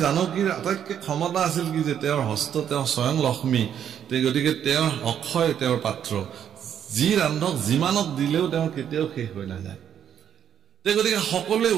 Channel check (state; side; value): quieter; left; 9.2 dB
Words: জানকীৰ আটাইতকৈ ক্ষমতা আছিল কি যে তেওঁৰ হস্ত তেওঁ স্বয়ং লক্ষ্মী গতিকে তেওঁৰ অক্ষয় তেওঁৰ পাত্ৰ যি ৰান্ধক যিমানক দিলেও তেওঁৰ কেতিয়াও শেষ হৈ নাযায় গতিকে সকলোৱে